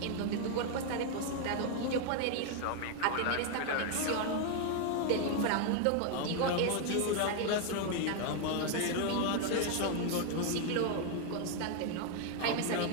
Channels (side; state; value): both; different; correlation 0.00